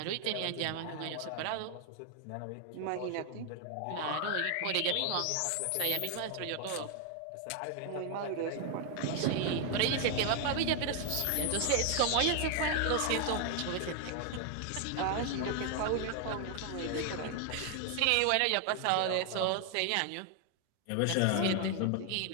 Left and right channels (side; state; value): both; different; correlation 0.00